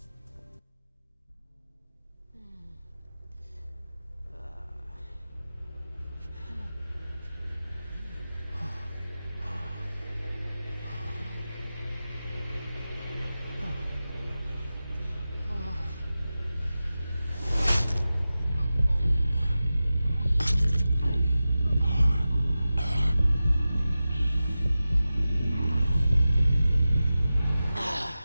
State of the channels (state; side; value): inverted; both; correlation -0.94